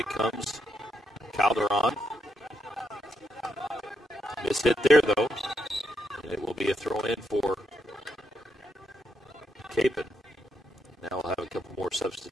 comes. Calderon. Miss hit there, though. And it will be a throw-in for Kapaun. Now we'll have a couple more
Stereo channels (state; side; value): normal; both; correlation 0.79